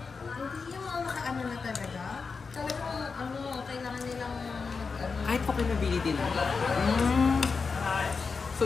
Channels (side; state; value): right; quieter; 4.9 dB